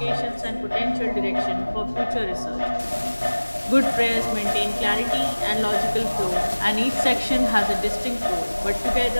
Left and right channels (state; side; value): inverted; both; correlation -1.00